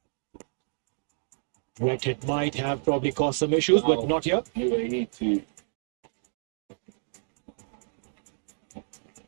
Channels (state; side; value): silent; left; digital silence